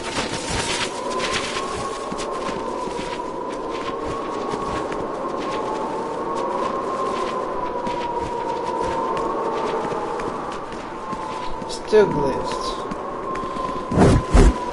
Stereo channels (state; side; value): identical; both; correlation 1.00